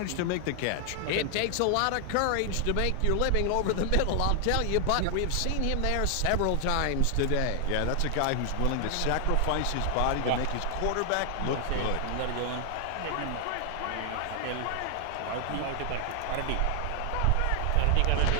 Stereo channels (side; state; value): both; different; correlation 0.00